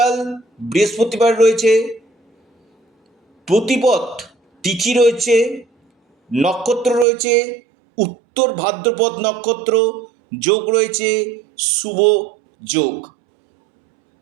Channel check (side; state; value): left; drops out; at 7.1 s